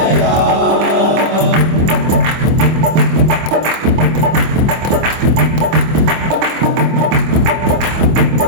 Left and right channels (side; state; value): left; late; 25 ms